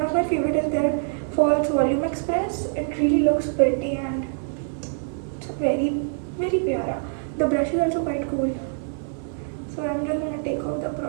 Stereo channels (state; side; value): silent; left; 62 dB below the other